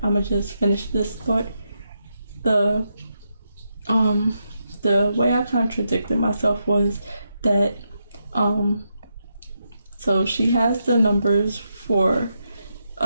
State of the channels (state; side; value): inverted; both; correlation -0.83